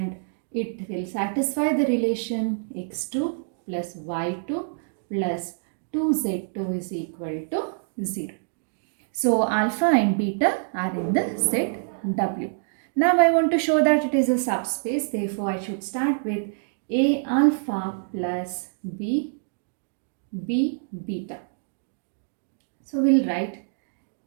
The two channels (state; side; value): silent; left; digital silence